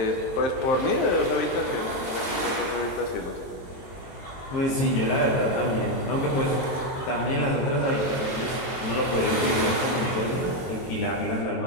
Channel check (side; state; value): right; late; 22 ms